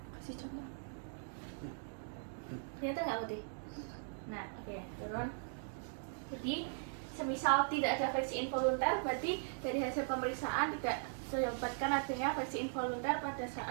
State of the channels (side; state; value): left; silent; digital silence